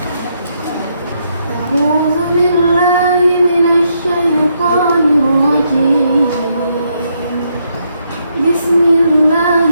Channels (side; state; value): both; inverted; correlation -0.77